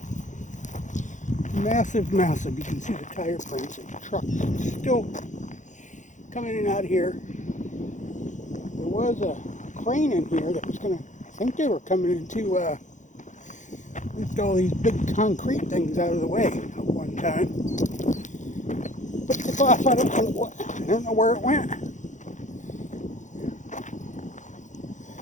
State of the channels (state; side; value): late; right; 0.36 ms